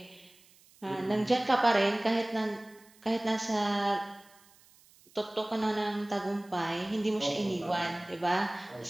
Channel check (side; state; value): right; noise; hiss, 28 dB below the sound